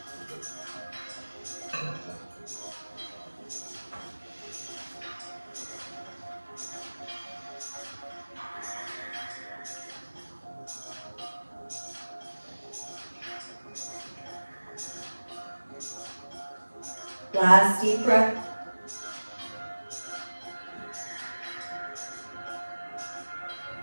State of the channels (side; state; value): both; inverted; correlation -1.00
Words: Last deep breath.